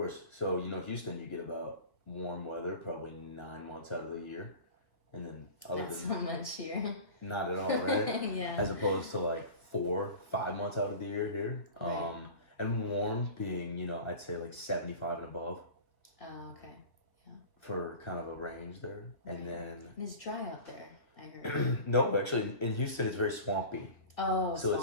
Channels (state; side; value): late; right; 1.6 ms